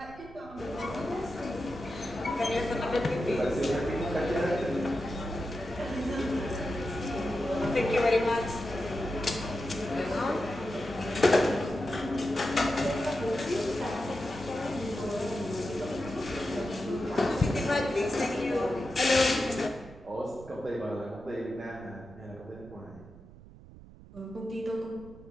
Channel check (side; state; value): right; noise; rumble, 19 dB below the sound